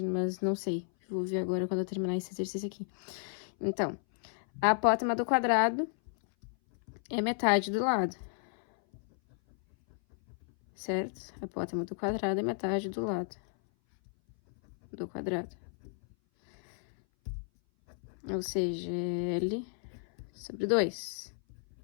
mas não sei. Vou ver agora quando eu terminar esse exercício aqui. Então, a apótema do quadrado é metade do lado. Certo? A apótema do quadrado é metade do lado do quadrado. Ou seja, L sobre 2.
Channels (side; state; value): right; silent; 56 dB below the other